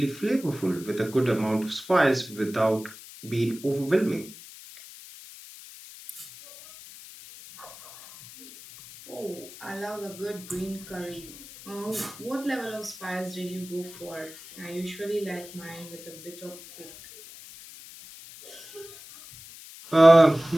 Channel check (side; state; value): left; noise; hiss, 17 dB below the sound